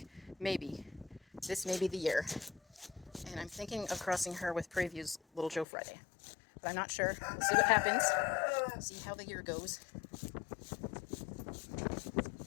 this may be the year. And I'm thinking of crossing her with Prairie View's Little Joe Friday. But I'm not sure. We'll see what happens. See how the year goes.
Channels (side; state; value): right; drops out; at 5.7 s